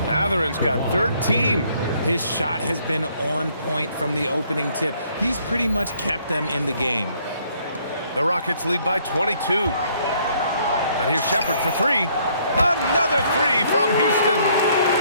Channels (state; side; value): inverted; both; correlation -0.65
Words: Matherin's got 13. His shot has been on point from the opening tip. He's pretty much kept them in the game. The Rockets lead by 22. And here's Shepherd for three. Another three from Houston.